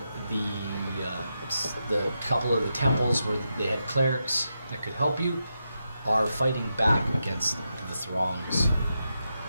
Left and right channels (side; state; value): both; inverted; correlation -0.86